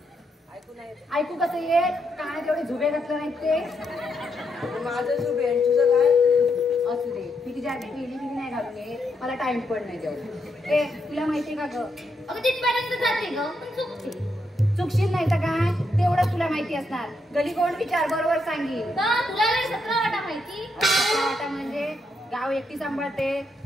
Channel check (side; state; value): both; normal; correlation 0.80